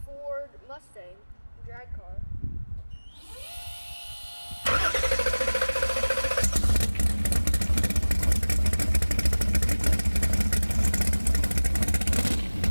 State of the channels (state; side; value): inverted; both; correlation -1.00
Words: Ford Mustang drag car.